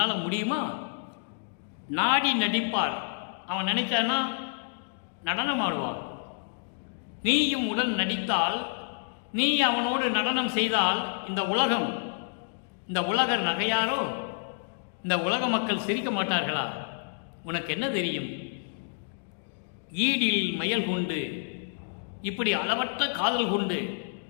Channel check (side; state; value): right; silent; digital silence